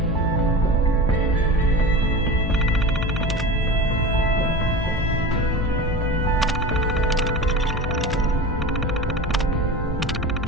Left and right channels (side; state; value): both; normal; correlation 0.30